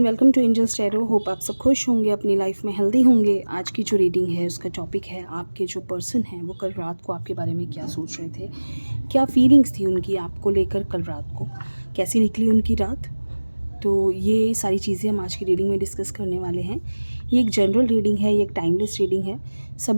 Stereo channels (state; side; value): inverted; both; correlation -1.00